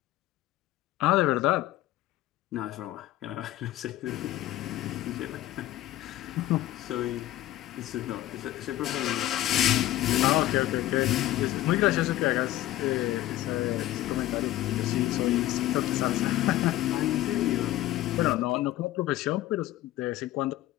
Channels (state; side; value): quieter; right; 15.0 dB